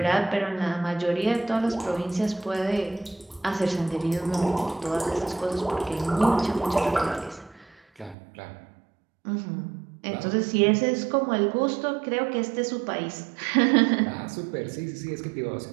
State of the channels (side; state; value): left; drops out; at 8.2 s